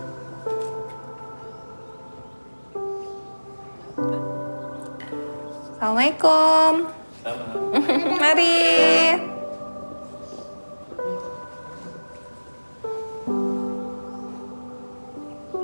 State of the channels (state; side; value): inverted; both; correlation -1.00